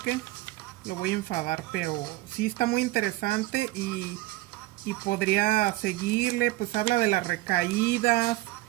lo voy a enfadar, pero sí está muy interesante y podría seguirle, pues habla de las recaídas,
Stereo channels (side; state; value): left; quieter; 18.9 dB